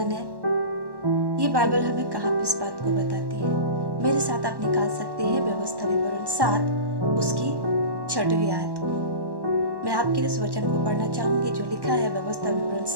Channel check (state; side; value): late; left; 1.1 ms